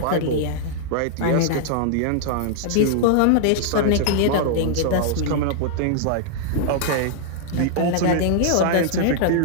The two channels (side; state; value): both; different; correlation -0.01